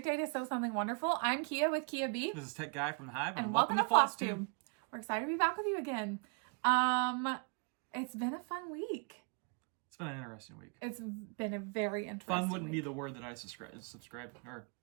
day to sew something wonderful. I'm Kia with Kia B. This is Tech Guy from the Hive, and welcome to Flosstube. We're excited to be back with you again. It's been a fun week. It's been an interesting week. It's been a very interesting Fun wouldn't week. be the word that I describe.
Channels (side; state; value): left; quieter; 38.2 dB